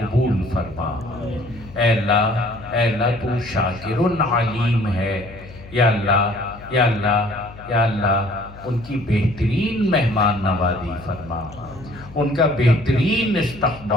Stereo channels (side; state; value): left; noise; hum, 18 dB below the sound